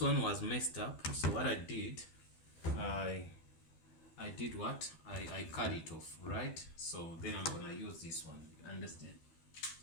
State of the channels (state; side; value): late; right; 12 ms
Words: was messed up, so what I did, I did what I cut it off, right? So then I'm going to use this one. Understand?